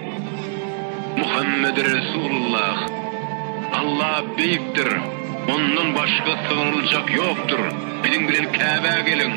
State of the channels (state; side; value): silent; left; 65 dB below the other